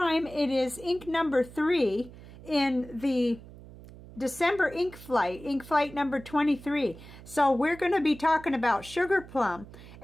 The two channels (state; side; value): noise; right; hum, 18 dB below the sound